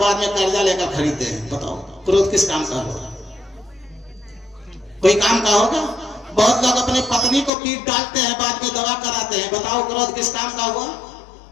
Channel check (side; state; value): right; drops out; at 7.5 s